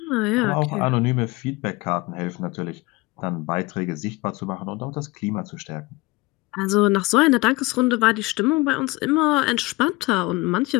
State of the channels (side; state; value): right; quieter; 22.3 dB